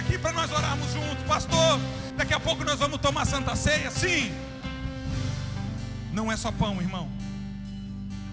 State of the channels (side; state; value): both; identical; correlation 1.00